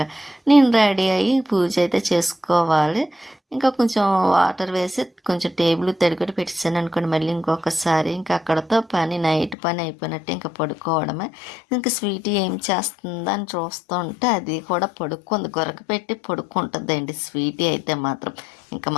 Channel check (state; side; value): drops out; right; at 9.6 s